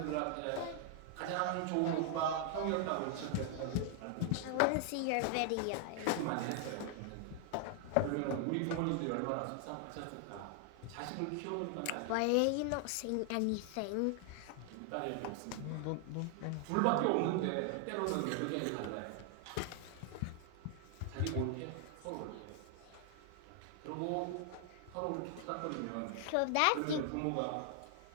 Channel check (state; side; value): different; both; correlation 0.00